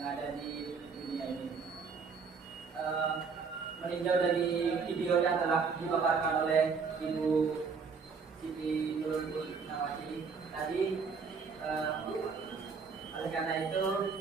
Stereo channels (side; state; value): left; quieter; 5.3 dB